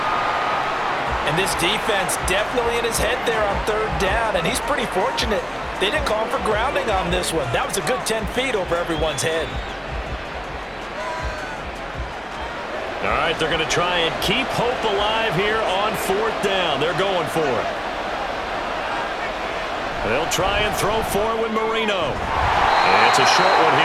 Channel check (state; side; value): identical; both; correlation 1.00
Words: And this defense definitely in his head there on 3rd down, and he's pretty fortunate. They didn't call him for grounding on this one. That was a good 10 feet over everyone's head. All right, they're going to try and keep hope alive here on 4th down. They're going for it. They'll try and throw for it with Marino. And it's a short one